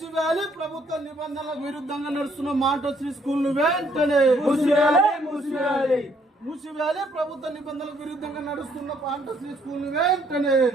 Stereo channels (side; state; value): both; normal; correlation 0.67